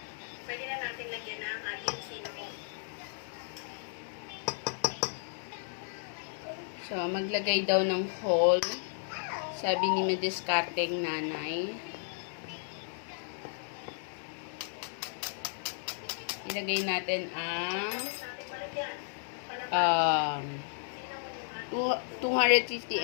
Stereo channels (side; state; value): right; silent; digital silence